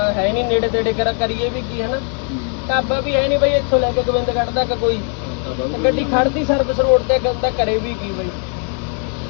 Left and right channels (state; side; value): quieter; right; 36.3 dB